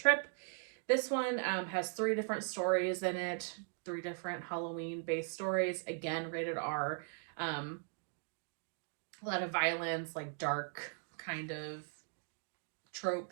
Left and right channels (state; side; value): silent; left; 52 dB below the other